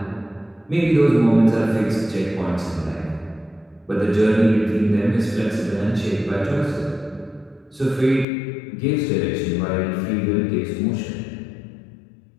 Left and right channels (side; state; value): right; drops out; at 8.2 s